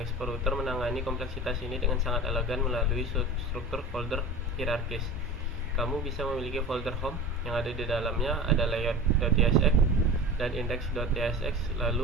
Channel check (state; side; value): normal; both; correlation 0.34